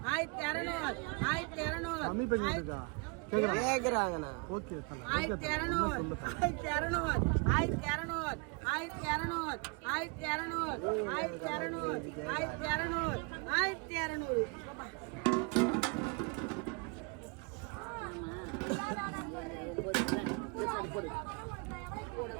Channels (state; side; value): quieter; left; 31.3 dB